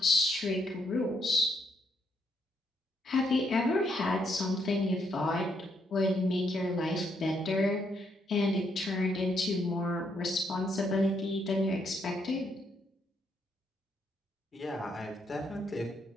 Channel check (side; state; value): both; normal; correlation 0.74